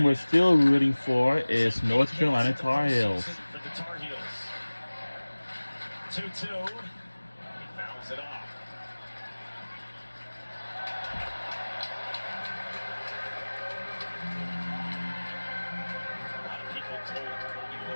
we're still rooting for is North Carolina Tar Heels. For the Tar Heels. 2-2. He fouls it off. A lot of people told Colby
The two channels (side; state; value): both; inverted; correlation -1.00